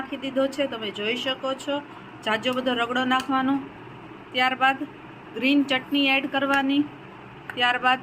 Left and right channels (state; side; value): identical; both; correlation 1.00